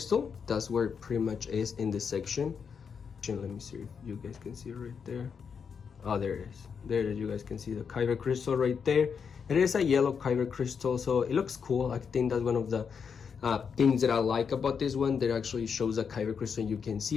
That's where it pretty much is in this section. Let me see if you guys can see it right there. Oh, there it is. There it is. You guys can see the kyber crystal right there. It is a yellow kyber crystal, so it looks cool. I think that's one of the things that I like about this one. That actually shows a kyber crystal and you can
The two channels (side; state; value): right; quieter; 6.4 dB